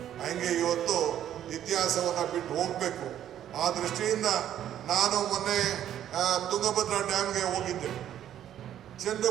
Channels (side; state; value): left; quieter; 10.9 dB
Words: ಹಂಗೆ ಇವತ್ತು ಇತಿಹಾಸವನ್ನು ಬಿಟ್ಟು ಹೋಗ್ಬೇಕು. ಆ ದೃಷ್ಟಿಯಿಂದ ನಾನು ಮೊನ್ನೆ ತುಂಗಭದ್ರಾ ಡ್ಯಾಮ್ಗೆ ಹೋಗಿದ್ದೆ.